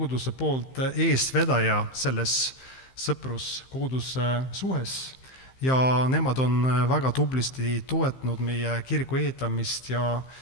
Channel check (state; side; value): late; right; 15 ms